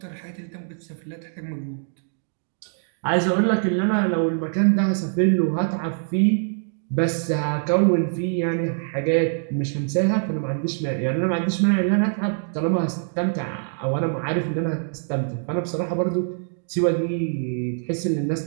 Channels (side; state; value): left; silent; digital silence